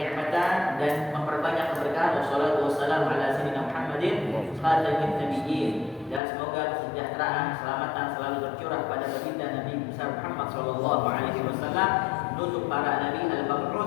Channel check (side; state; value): right; drops out; at 6.2 s